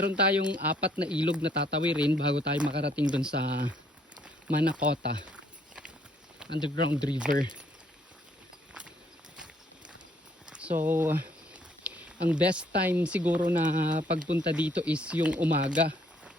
tayong 4 na ilog na tatawirin bago tayo makarating dun sa Manakota Underground River. So ang best time siguro na pagpunta dito is yung umaga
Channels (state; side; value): normal; both; correlation 0.66